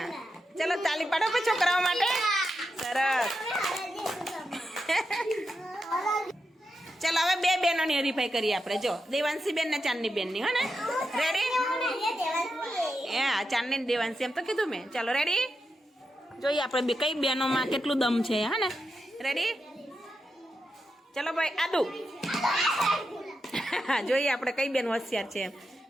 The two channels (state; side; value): normal; both; correlation 0.87